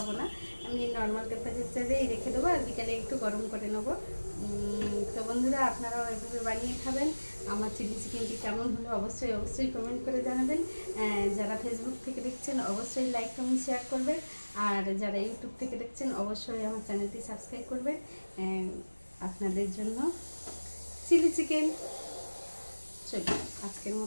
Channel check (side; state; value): both; inverted; correlation -1.00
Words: না, আমি নর্মাল টেম্পারেচারেই রেখে দেবো, আর বিকালে একটু গরম করে নেবো। তো বন্ধুরা, আপনারাও এভাবে বানিয়ে খাবেন। আমার চিলি চিকেনটি কেমন হলো অবশ্যই কমেন্ট করে জানাবেন। যারা ফেসবুক থেকে দেখছেন অবশ্যই লাইক কমেন্ট শেয়ার করবেন, আর যারা ইউটিউব থেকে দেখছেন অবশ্যই আমার চ্যানেলটি সাবস্ক্রাইব করবেন। আপনাদের জন্য চিলি চিকেন। চলুন আজকের